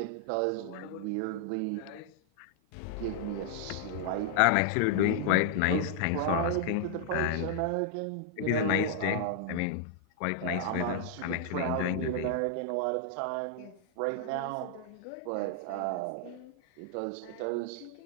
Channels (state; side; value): different; both; correlation -0.01